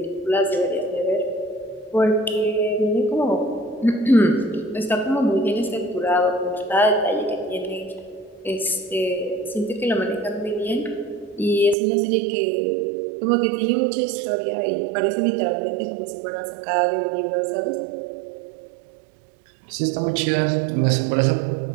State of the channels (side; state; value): left; drops out; at 11.8 s